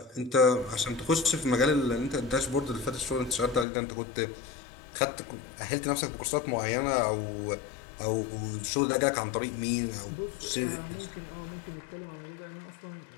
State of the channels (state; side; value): drops out; right; at 3.7 s